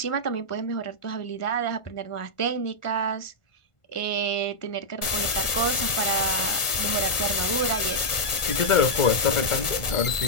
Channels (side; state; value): right; late; 1.4 ms